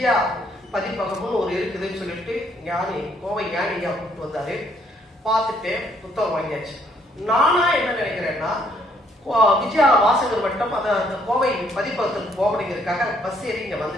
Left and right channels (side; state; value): both; normal; correlation 0.68